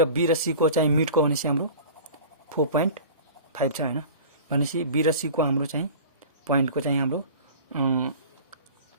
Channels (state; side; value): inverted; both; correlation -0.39